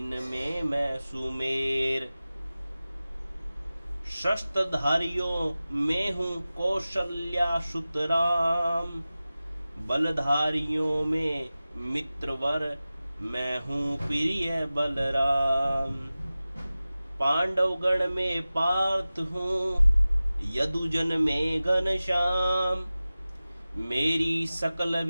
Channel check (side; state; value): both; inverted; correlation -0.96